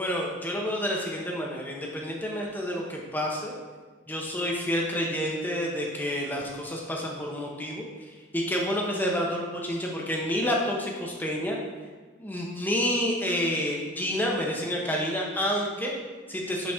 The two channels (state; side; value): normal; both; correlation 0.43